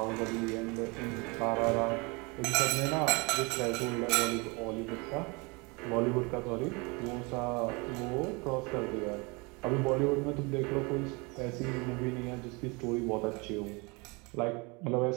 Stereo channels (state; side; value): quieter; left; 28.2 dB